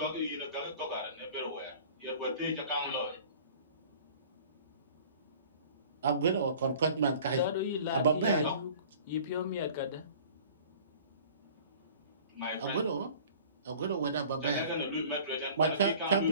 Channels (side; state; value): both; inverted; correlation -0.46